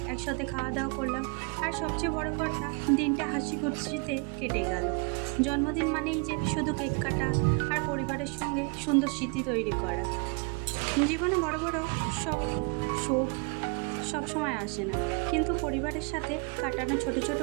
একসাথে খাওয়া দাওয়া করলাম, আর সবচেয়ে বড় কথা, দিনটা হাসি খুশিতে কেটে গেল। জন্মদিন মানেই যে শুধু কেক কাটা আর পরিবারের সঙ্গে সুন্দর স্মৃতি তৈরি করা। জীবনে বড় বড় সব সুখ সবসময় আসে না, কিন্তু পরিবারের সাথে কাটানো ছোট ছোট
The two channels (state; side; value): quieter; left; 32.5 dB